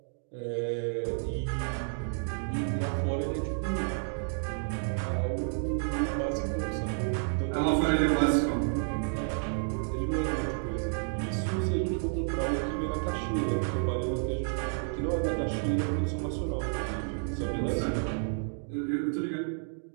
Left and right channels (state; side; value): silent; left; digital silence